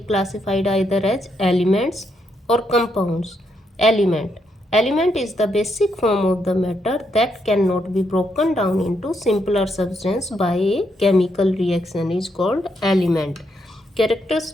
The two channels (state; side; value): normal; both; correlation 0.78